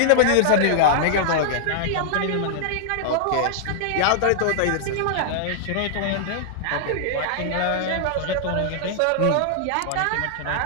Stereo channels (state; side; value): different; both; correlation -0.01